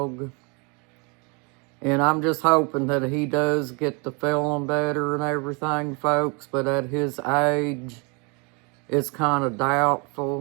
And I'm just hoping that he does get to feeling better and everything, folks. But at his age, it's kind of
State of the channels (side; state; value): left; quieter; 31.7 dB